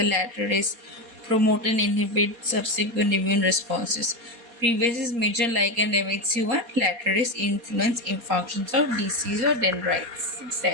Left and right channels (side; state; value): left; late; 4.2 ms